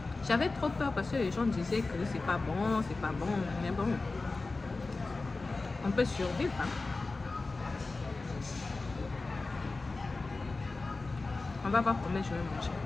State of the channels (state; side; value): quieter; right; 3.6 dB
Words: J'avais trop peur parce que les gens disaient que c'est pas bon, mais bon, on peut survivre. Hein. On va voir combien je vais manger.